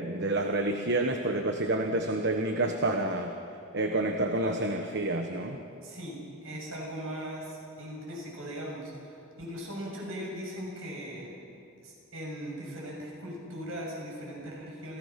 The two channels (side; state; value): both; normal; correlation 0.02